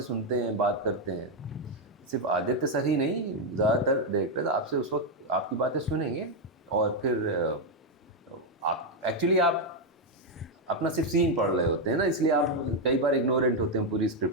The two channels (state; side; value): normal; both; correlation 0.03